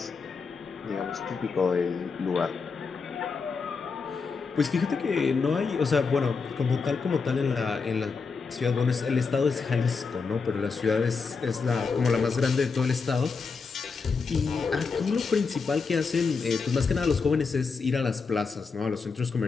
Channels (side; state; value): right; quieter; 4.9 dB